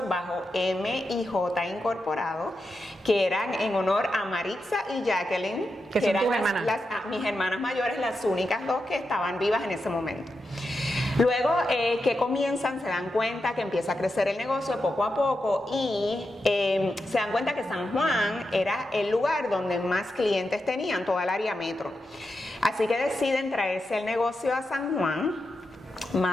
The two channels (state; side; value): normal; both; correlation 0.88